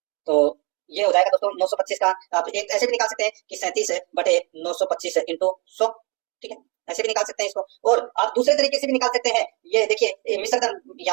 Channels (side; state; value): left; quieter; 30.6 dB